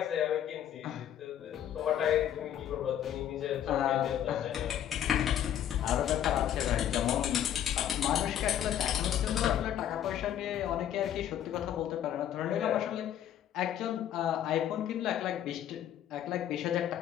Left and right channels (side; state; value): right; quieter; 10.6 dB